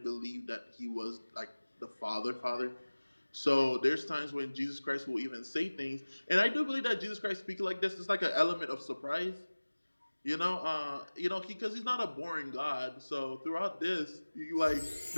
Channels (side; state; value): both; inverted; correlation -1.00